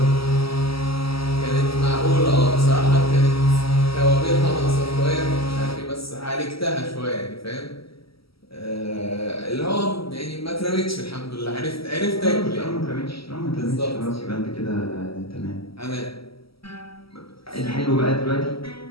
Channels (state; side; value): late; right; 0.75 ms